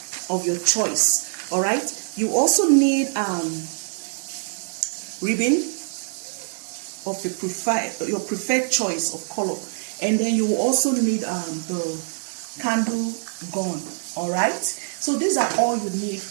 of your choice. All right. You also need ribbon of your preferred choice of color, and then you will also need the candle gun. All right. So these are all you need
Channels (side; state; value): left; silent; digital silence